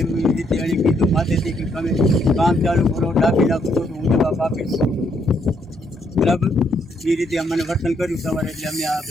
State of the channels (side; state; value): both; normal; correlation 0.73